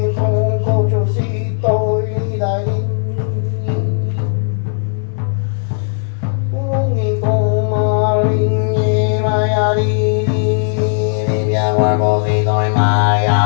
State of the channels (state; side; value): silent; right; 69 dB below the other